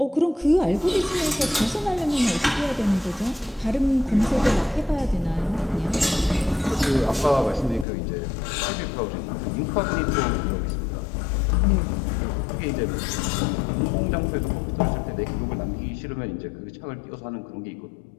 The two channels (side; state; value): right; drops out; at 7.9 s